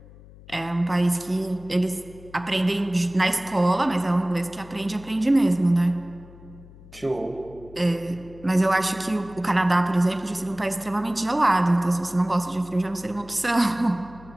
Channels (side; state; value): left; noise; hum, 21 dB below the sound